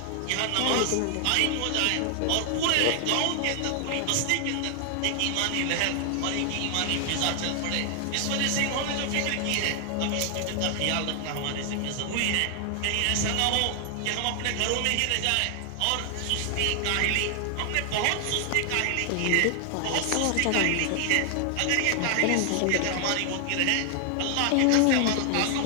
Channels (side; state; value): both; different; correlation 0.00